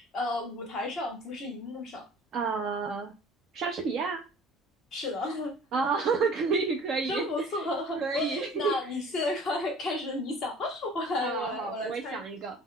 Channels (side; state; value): both; normal; correlation 0.47